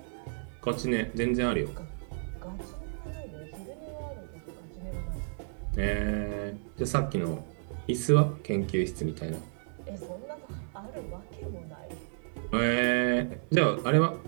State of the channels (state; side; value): silent; left; 57 dB below the other